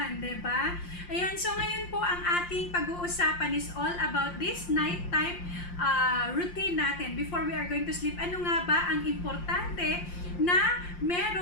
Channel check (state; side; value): late; right; 5.7 ms